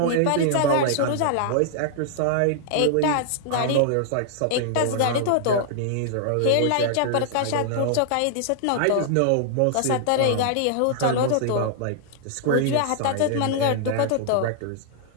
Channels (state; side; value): different; both; correlation -0.01